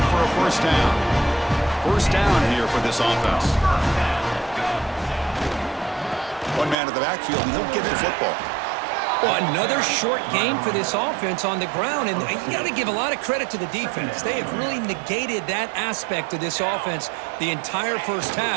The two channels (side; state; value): left; drops out; at 6.8 s